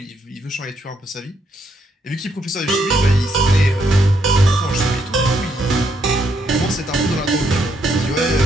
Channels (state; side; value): normal; both; correlation 0.75